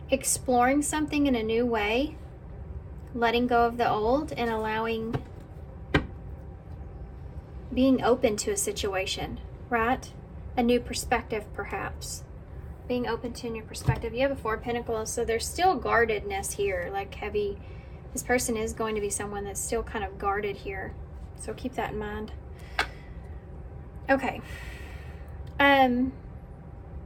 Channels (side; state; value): both; identical; correlation 1.00